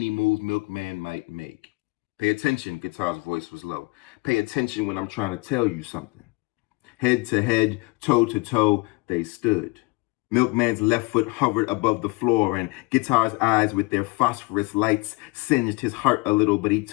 move Milkman might make. Pay attention, Guitar's voice was low. Pay attention when I'm trying to tell you something. Head to head, toe to toe, they stood. Milkman's left foot hovered above the floor, and Guitar's eyes with their phosphorus lights singed his heart a little, but he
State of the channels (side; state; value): right; quieter; 27.3 dB